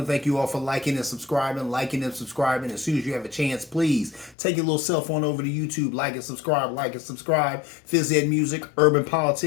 to thank you all for liking and subscribing. As soon as you have a chance, please take your little cell phone over to YouTube, like and subscribe. Fizz Ed Music, Urban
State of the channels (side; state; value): right; drops out; at 4.4 s